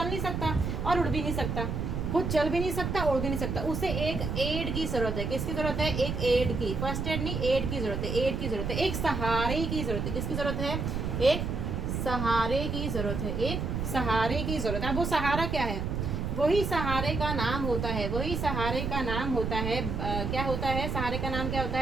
नहीं सकता और उड़ भी नहीं सकता। खुद चल भी नहीं सकता, उड़ भी नहीं सकता। उसे एक एड की जरूरत है। किसकी जरूरत है? एक एड की। फर्स्ट एड नहीं, एड की जरूरत है। एक सहारे की जरूरत है। किसकी जरूरत है? एक सहारे की जरूरत है। अब वो सहारा क्या है? वही सहारे का नाम होता है। क्या होता है? सहारे का नाम क्या होता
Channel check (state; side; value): noise; right; rumble, 2 dB below the sound